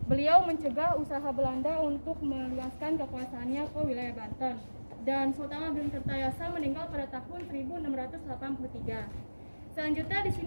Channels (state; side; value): inverted; both; correlation -1.00